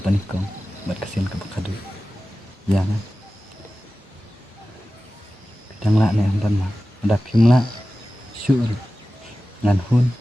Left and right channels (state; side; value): normal; both; correlation 0.95